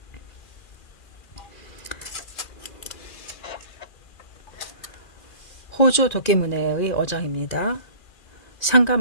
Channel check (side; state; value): right; late; 2.4 ms